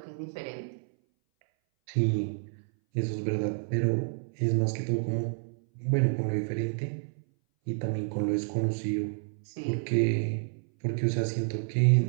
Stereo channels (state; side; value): silent; left; 58 dB below the other